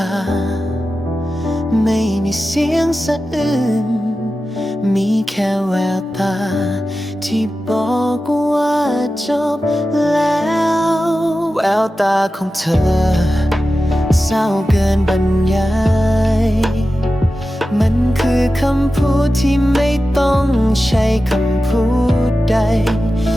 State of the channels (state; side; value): normal; both; correlation 0.93